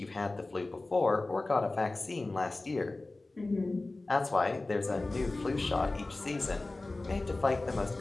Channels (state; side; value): quieter; right; 3.1 dB